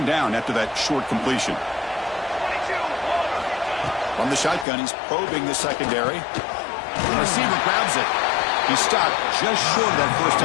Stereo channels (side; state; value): right; drops out; at 4.7 s